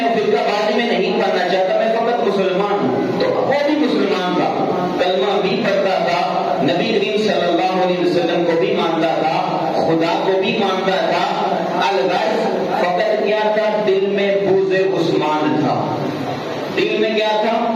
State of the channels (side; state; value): both; identical; correlation 1.00